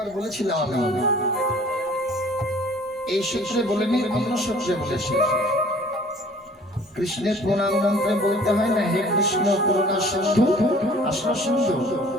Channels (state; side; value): normal; both; correlation 0.52